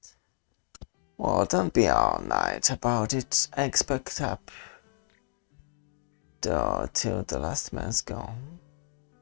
Well, don't be all night about it. I expect up till the last man's gone.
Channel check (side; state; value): right; silent; digital silence